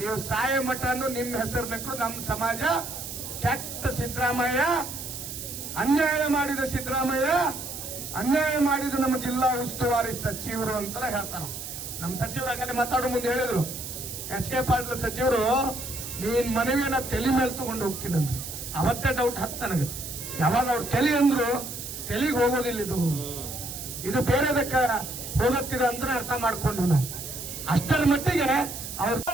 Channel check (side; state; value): right; noise; hiss, 8 dB below the sound